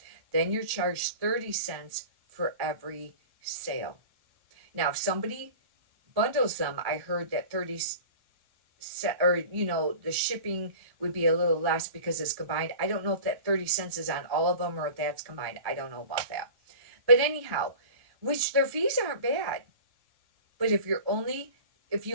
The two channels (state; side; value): late; left; 1.0 ms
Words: Then you're charged 30 cents for every sale. Now, if somebody bundles them, I heard that 30 or you know, the shipping would be a little less because it's combined. I don't know if that 30 cents is on all of them or if that's combined. I don't know about that. But anyhow, which their fees aren't bad. But if you